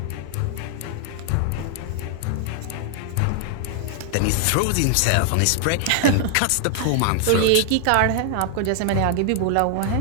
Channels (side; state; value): both; different; correlation 0.00